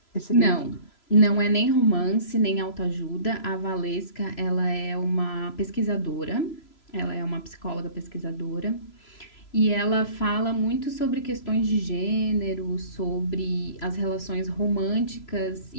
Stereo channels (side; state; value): right; late; 3.0 ms